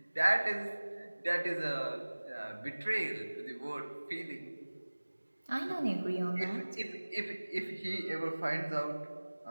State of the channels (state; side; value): inverted; both; correlation -1.00